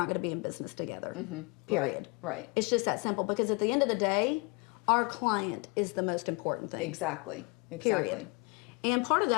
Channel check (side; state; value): right; quieter; 29.4 dB